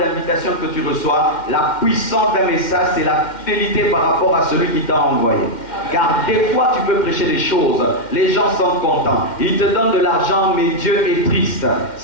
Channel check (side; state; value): right; late; 2.1 ms